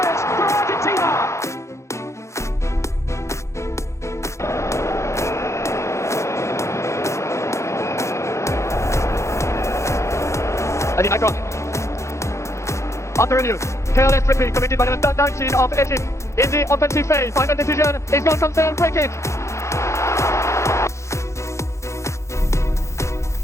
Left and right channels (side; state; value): right; late; 0.14 ms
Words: for Argentina. And the icon. Under review. Careless tripping committed by the number 19 of Egypt in the offensive phase. Final decision is non-concerned free kick.